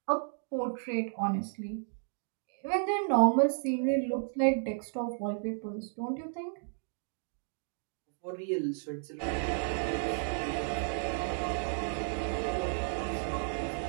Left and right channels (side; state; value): left; silent; digital silence